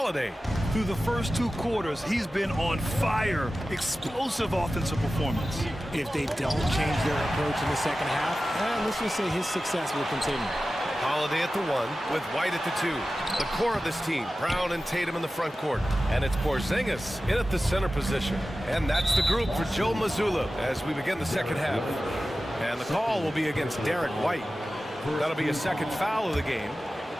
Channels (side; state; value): both; normal; correlation 0.95